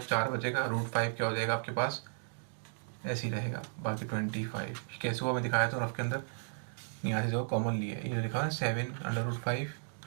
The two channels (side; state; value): left; silent; digital silence